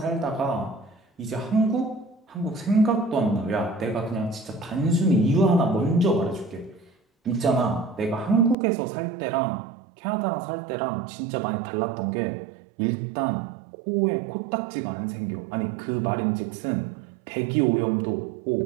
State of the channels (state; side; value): drops out; left; at 8.6 s